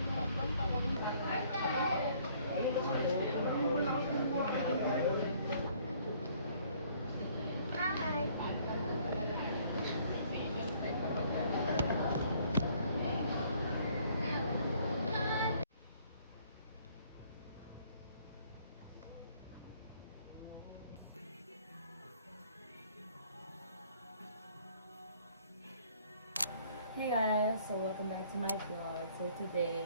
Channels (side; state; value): both; inverted; correlation -0.61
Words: Hey guys, so welcome back to my vlog. So